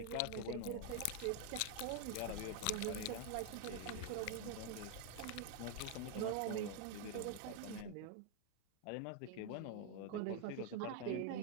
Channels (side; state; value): both; different; correlation 0.00